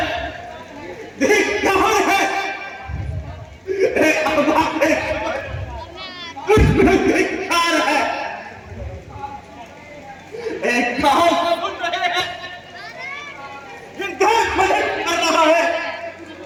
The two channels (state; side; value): identical; both; correlation 1.00